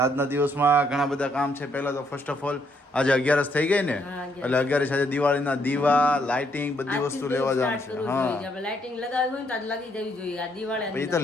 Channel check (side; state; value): both; normal; correlation 0.72